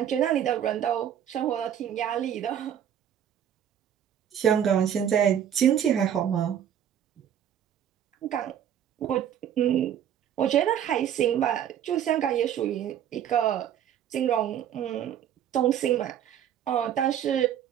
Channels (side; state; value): left; quieter; 9.7 dB